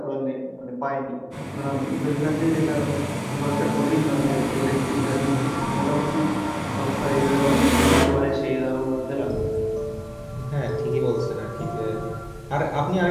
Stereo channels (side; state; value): both; identical; correlation 1.00